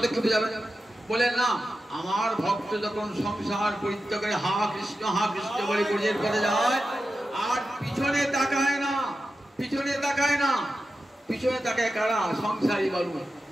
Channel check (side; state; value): both; normal; correlation 0.91